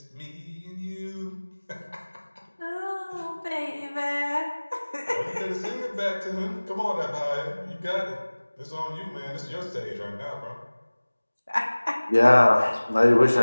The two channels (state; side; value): inverted; both; correlation -1.00